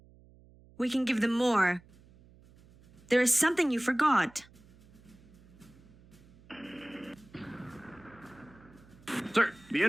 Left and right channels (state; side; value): noise; right; hum, 25 dB below the sound